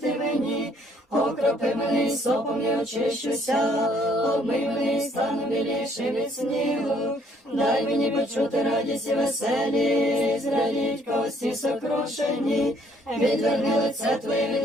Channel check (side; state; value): both; normal; correlation 0.64